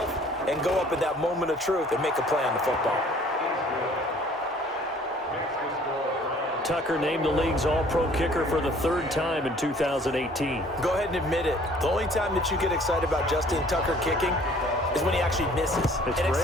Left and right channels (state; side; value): normal; both; correlation 0.55